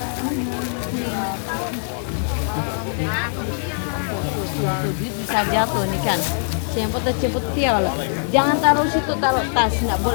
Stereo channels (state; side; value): silent; right; digital silence